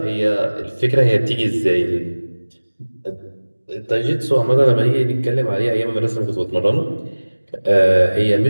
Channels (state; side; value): inverted; both; correlation -1.00